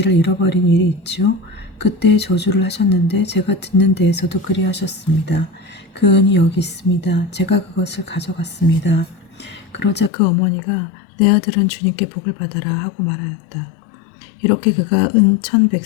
잃어버린 일이 있지요. 그때 저주를 하셨는데 제가 듣는 데에서도 그리하셨습니다. 그 은이 여기 있습니다. 제가 그것을 가져갔습니다. 그러자 그 어머니가 내 아들은 주님께 복을 받아라 하고 말하였다. 이렇게 그가 은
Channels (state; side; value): drops out; right; at 10.1 s